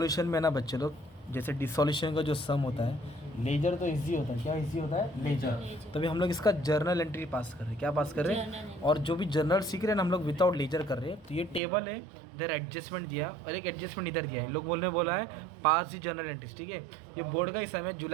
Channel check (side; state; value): left; drops out; at 11.6 s